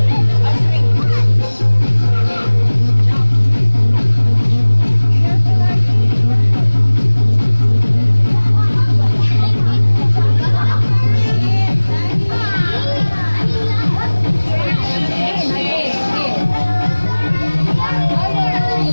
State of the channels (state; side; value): inverted; both; correlation -1.00